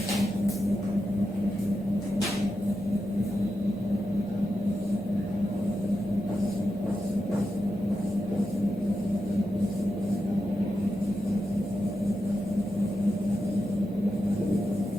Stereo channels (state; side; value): normal; both; correlation 0.88